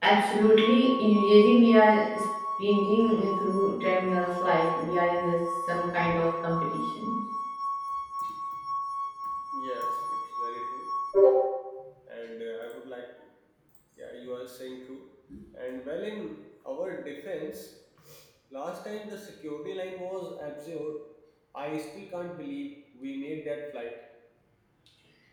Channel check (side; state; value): both; identical; correlation 1.00